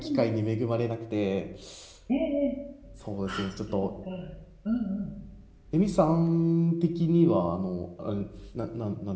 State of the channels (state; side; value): identical; both; correlation 1.00